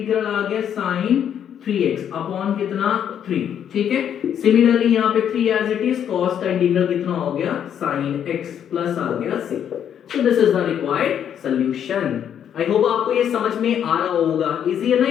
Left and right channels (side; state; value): right; quieter; 9.1 dB